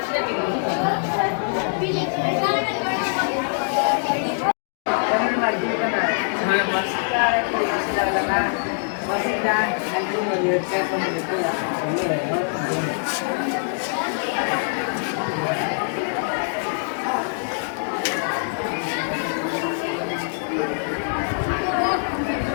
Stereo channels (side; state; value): right; silent; digital silence